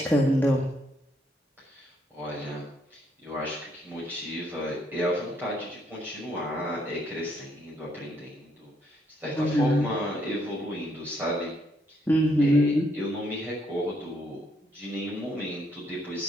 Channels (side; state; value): both; normal; correlation 0.72